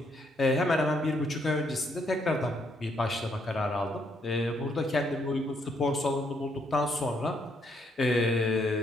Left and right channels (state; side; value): normal; both; correlation 0.73